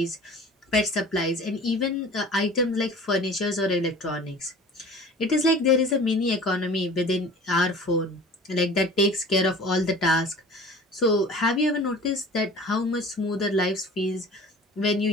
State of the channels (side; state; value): both; normal; correlation 0.43